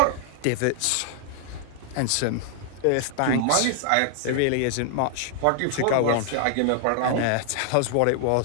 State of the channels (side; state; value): both; different; correlation -0.01